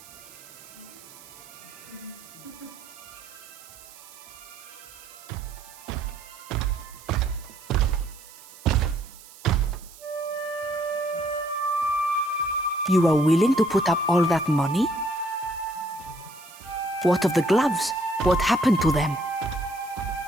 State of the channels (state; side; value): noise; right; hiss, 20 dB below the sound